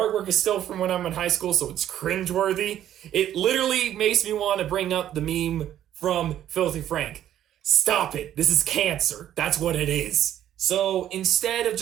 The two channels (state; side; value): quieter; left; 11.4 dB